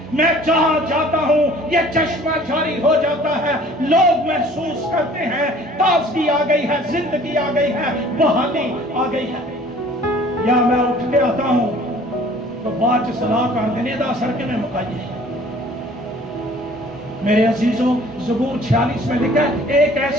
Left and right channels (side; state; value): both; normal; correlation 0.52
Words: میں جہاں جاتا ہوں یہ چشمہ جاری ہو جاتا ہے، لوگ محسوس کرتے ہیں تازگی آ گئی ہے، زندگی آ گئی ہے، بحالی آ گئی ہے۔ یا میں اٹھ کے آتا ہوں تو بعد صلاح کر دینے دا سر کے میں مکائیے۔ میرے عزیزوں، زبور 46 میں لکھا ہے ایک